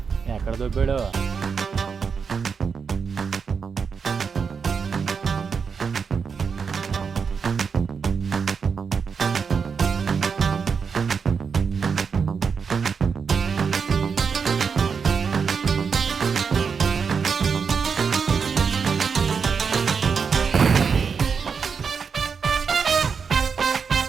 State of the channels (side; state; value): left; quieter; 5.9 dB